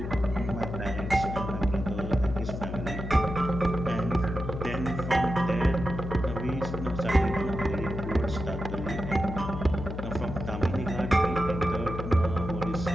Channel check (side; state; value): left; noise; hum, 6 dB below the sound